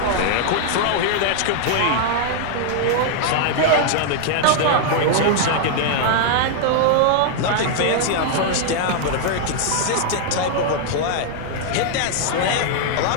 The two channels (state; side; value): different; both; correlation -0.01